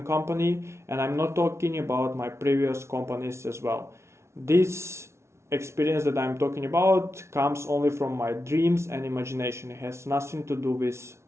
company, and I'm not talking about my previous companies as well. This experience that I'm talking about comes only from my dreams and imagination. It has nothing to do with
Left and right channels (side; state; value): left; late; 0.13 ms